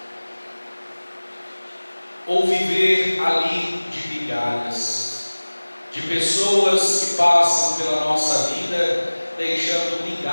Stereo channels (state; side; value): inverted; both; correlation -1.00